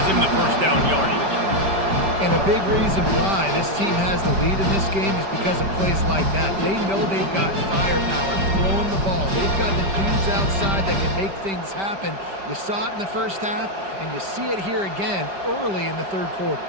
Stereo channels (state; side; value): late; left; 5.1 ms